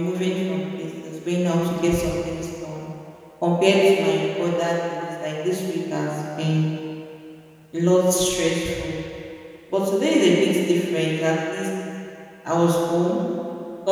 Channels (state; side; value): identical; both; correlation 1.00